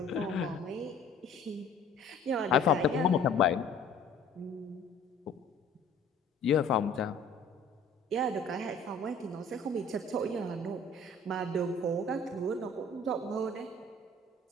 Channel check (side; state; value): right; quieter; 3.1 dB